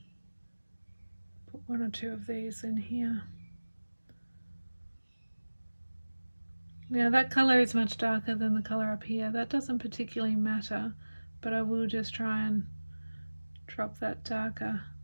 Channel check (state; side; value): inverted; both; correlation -1.00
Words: Put 1 or 2 of these in here. Now that colour is much darker than the colour up here. That doesn't particularly matter, but I will just try and drop that darker